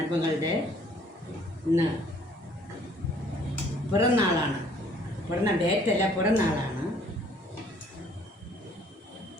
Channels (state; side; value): normal; both; correlation 0.59